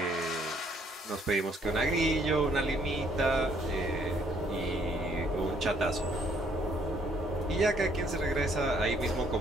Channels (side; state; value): both; normal; correlation 0.66